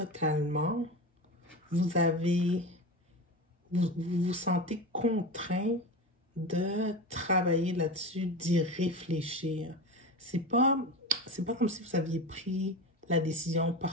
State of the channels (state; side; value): normal; both; correlation 0.26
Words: vous vous sentez contraint de travailler là-dessus, d'y réfléchir. C'est pas comme si vous aviez pris la décision